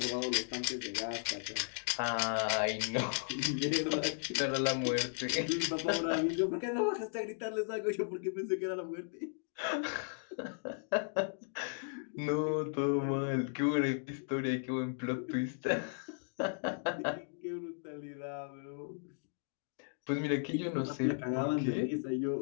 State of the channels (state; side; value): silent; right; digital silence